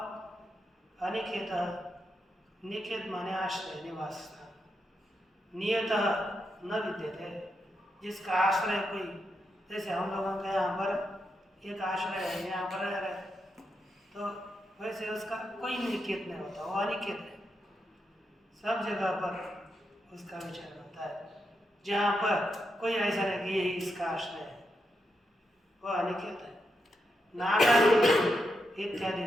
अनिकेत, निकेत माने आश्रय, निवास स्थान। नियत न विद्यते, जिसका आश्रय कोई, जैसे हम लोगों का यहाँ पर एक आश्रय है, यहाँ पर रह रहे, तो वैसे उसका कोई निकेत नहीं होता, वो अनिकेत है। सब जगह पर उसका विचरण होता है। जहाँ पर कोई ऐसा नहीं कि यही इसका आश्रय है, वो अनिकेत है। नागादि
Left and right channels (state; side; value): normal; both; correlation 0.84